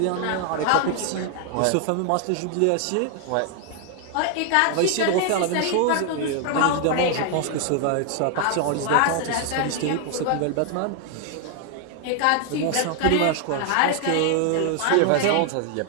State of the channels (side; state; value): both; different; correlation 0.00